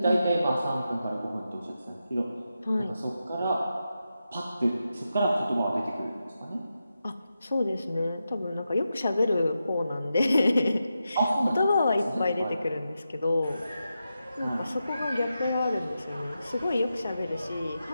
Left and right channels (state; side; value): inverted; both; correlation -0.89